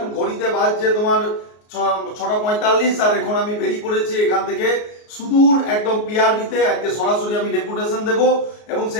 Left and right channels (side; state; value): right; late; 33 ms